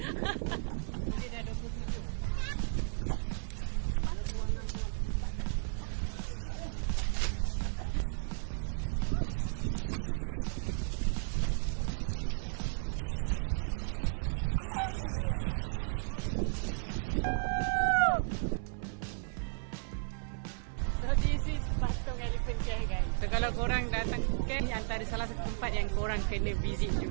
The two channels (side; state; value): left; silent; 55 dB below the other